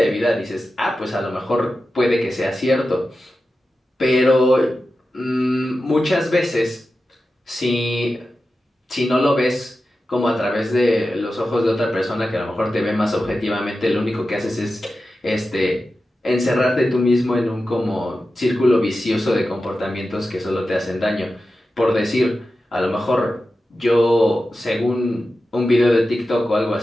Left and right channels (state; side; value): normal; both; correlation 0.92